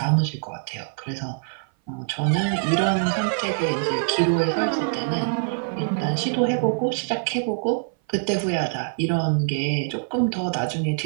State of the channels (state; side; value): silent; left; 58 dB below the other